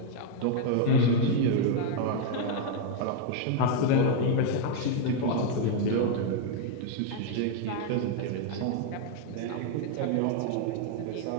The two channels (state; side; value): different; both; correlation 0.00